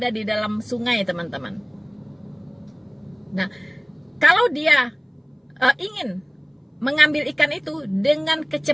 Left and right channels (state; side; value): identical; both; correlation 1.00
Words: di dalam sungai, teman-teman. Nah, kalau dia ingin mengambil ikan itu dengan